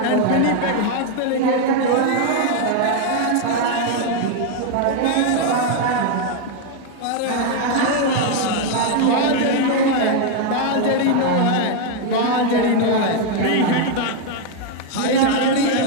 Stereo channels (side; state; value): both; different; correlation 0.01